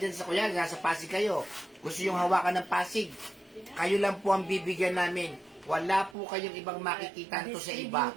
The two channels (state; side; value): drops out; left; at 6.2 s